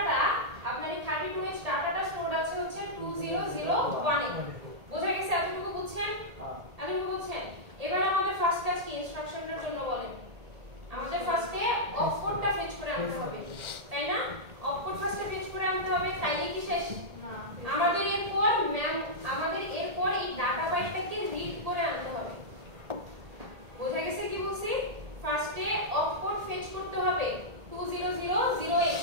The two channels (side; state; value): left; late; 1.8 ms